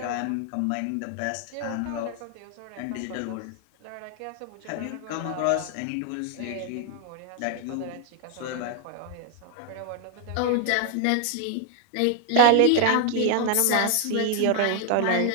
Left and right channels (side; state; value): both; different; correlation 0.00